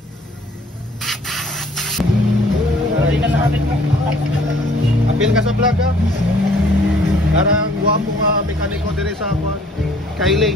Apil ka sa vlog ha. Karang guwapo nga mekaniko dire sa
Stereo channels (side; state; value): both; normal; correlation 0.57